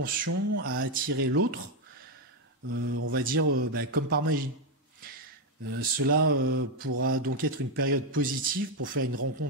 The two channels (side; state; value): both; normal; correlation 0.05